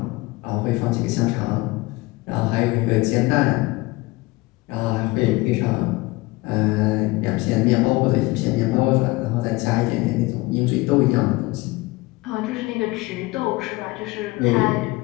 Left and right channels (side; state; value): right; quieter; 21.9 dB